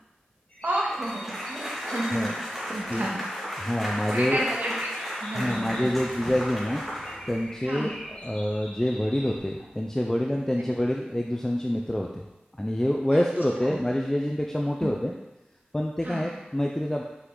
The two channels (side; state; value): both; normal; correlation 0.95